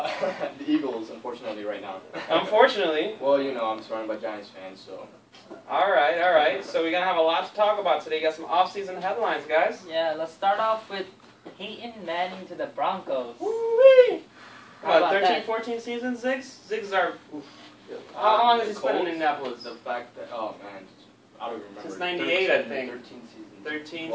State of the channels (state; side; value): identical; both; correlation 1.00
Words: Eagles, unfortunately, right now. Unfortunately. Well, you know, I'm surrounded by Giants fans, so. Alright. So we're going to have a lot to talk about today. Got some off-season headlines, guys. Yeah, let's start off with Peyton Manning to the Broncos. Woo-wee! How about 13, that? 14 seasons, Ziggs? Ziggs are... How long has he spent in Indianapolis? The fact that, oh man, I don't remember. Since 98, I 13 think. 13 seasons. 13